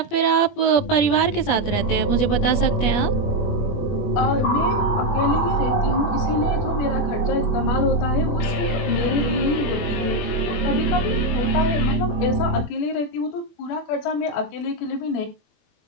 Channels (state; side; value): late; right; 21 ms